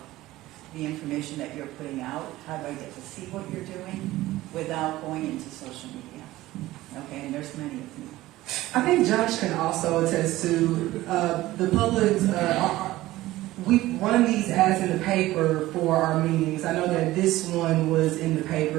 the information that you're putting out? How do I get to see what you're doing without going into social media? Okay, and there's many of you. I think Josh can also attest to the public. We run these ads in the paper for our meetings. I know that this one was in the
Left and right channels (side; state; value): left; quieter; 16.9 dB